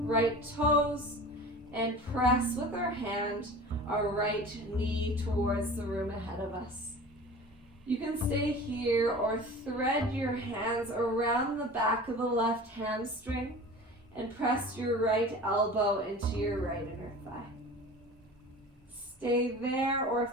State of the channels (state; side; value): normal; both; correlation 0.38